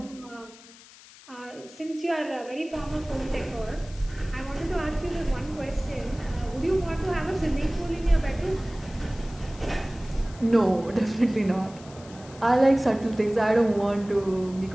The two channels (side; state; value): left; noise; hiss, 21 dB below the sound